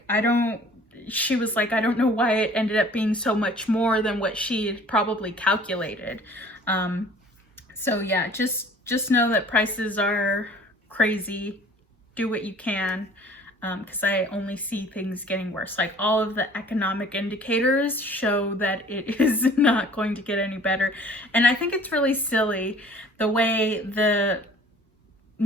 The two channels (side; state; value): both; normal; correlation 0.50